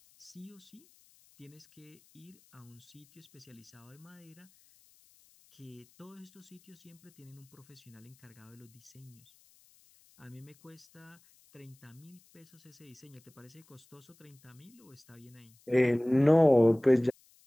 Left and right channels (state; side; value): noise; left; hiss, 28 dB below the sound